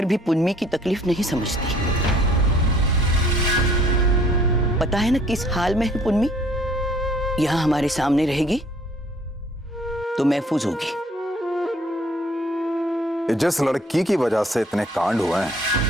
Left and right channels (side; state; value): both; normal; correlation 0.58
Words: भी पुन्नी की तकलीफ नहीं समझती। पता है ना किस हाल में है पुन्नी? यहाँ हमारे सामने रहेगी तो महफूज होगी। जिस लड़की की वजह से इतने कांड हुए हैं,